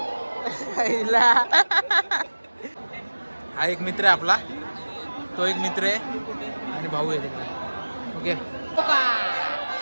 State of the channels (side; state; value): both; inverted; correlation -1.00